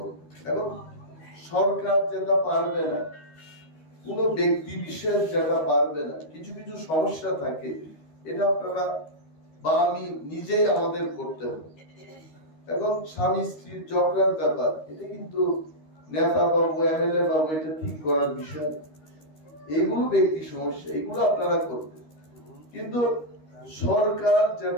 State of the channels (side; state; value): right; late; 13 ms